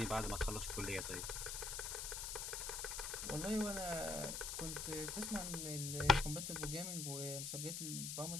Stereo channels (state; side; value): noise; left; hiss, 3 dB below the sound